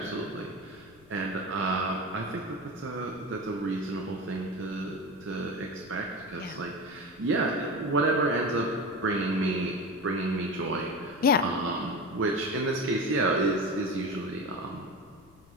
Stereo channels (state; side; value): noise; left; rumble, 27 dB below the sound